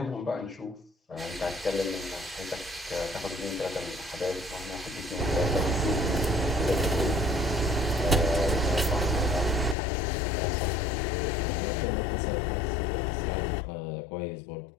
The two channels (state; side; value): drops out; right; at 9.8 s